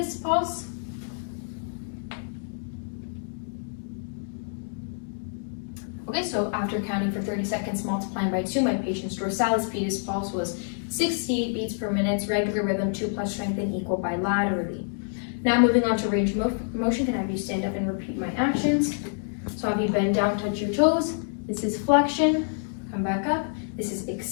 pulse. Okay, so after counting for 30 seconds, multiplying by 2, my patient's dorsalis pedis pulse was 68 beats per minute, regular rhythm, 2 plus strength, and equal bilaterally. Now moving on to range of motion, can I have you stand up and repeat my actions? So have you bend down, touch your toes. This is flexion, come back up. This is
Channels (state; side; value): silent; right; digital silence